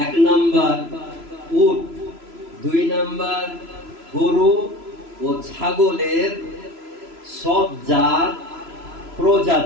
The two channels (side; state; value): left; late; 3.0 ms